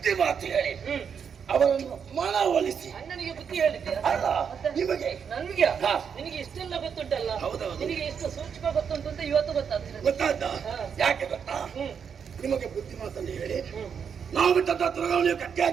ಮಾತು ಹೇಳಿ ಅವರನ್ನು ಮನವೊಲಿಸಿ. ಅಣ್ಣನಿಗೆ ಬುದ್ಧಿ ಹೇಳಿದ್ದೆ? ಅಲ್ಲ, ನಿಮಗೆ. ನನ್ಗೆ? ಹಾ. ನಿನಗೆ ಇಷ್ಟೆಲ್ಲ ಗೊತ್ತುಂಟಲ್ಲ. ಹೌದೌದು. ನಿನಗೆ ಎಷ್ಟು ಸೂಕ್ಷ್ಮ ಗೊತ್ತುಂಟು ಅಂತ ಇವತ್ತು ಗೊತ್ತಾಗ್ತದೆ. ಗೊತ್ತಾದ? ಯಾಕೆ ಗೊತ್ತಾ? ನಿಮಗೆ ಬುದ್ಧಿ ಮಾತನ್ನು ಹೇಳಿ ನಾವು ಬಿಟ್ಟಂತ ತುರಗವನ್ನು ನೀವು ಕಟ್ಟಿ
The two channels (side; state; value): left; quieter; 7.0 dB